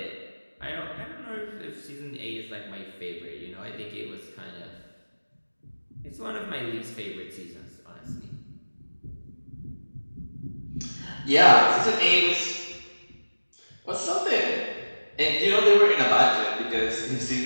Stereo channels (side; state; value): both; inverted; correlation -1.00